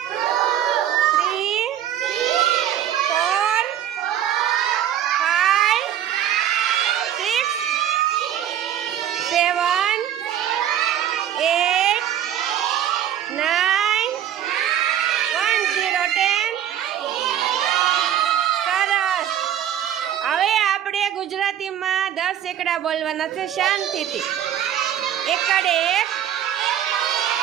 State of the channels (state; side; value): quieter; left; 10.6 dB